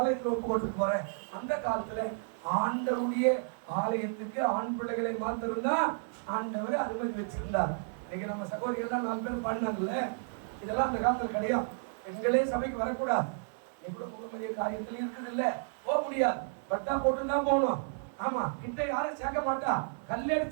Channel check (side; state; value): left; silent; 56 dB below the other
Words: ஒப்பு கொண்டு போறேன். அந்த காலத்துல ஆண்டவருடைய ஆலயத்துக்கு ஆண் பிள்ளைகளை மாத்திருந்தான் ஆண்டவர் அனுமதி வச்சிருந்தார். இன்னைக்கு நம்ம சகோதரிகள் 4 பேர் பண்ணாங்கல்ல, இதெல்லாம் அந்த காலத்துல கிடையாது. பெண்களே சபைக்கு வரக்கூடாது. எவ்வளவு முகமதிய காரியத்திலையும் இருக்குது இல்ல, போக முடியாது, பட்டா போட்டுதான் போகணும். ஆமா, கிட்ட யாரும் சேர்க்க மாட்டா,